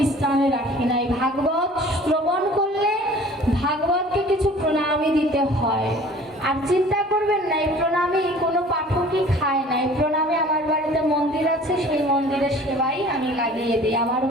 রাখি নাই। ভাগবত শ্রবণ করলে ভাগবতকে কিছু প্রণামী দিতে হয়। আর চিন্তা করবেন না, এই প্রণামী কোনো পাঠকই খায় না। এই প্রণামী আমার বাড়িতে মন্দির আছে, সেই মন্দিরের সেবাই আমি লাগিয়ে দিই। আমার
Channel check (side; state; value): both; normal; correlation 0.48